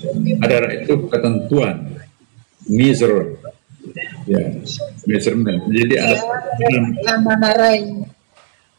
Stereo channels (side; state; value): left; silent; digital silence